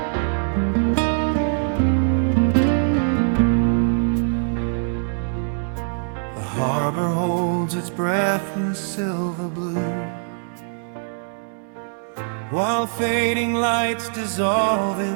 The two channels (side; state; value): left; silent; digital silence